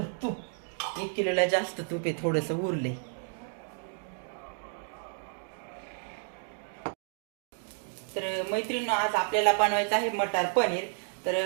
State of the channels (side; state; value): left; silent; 57 dB below the other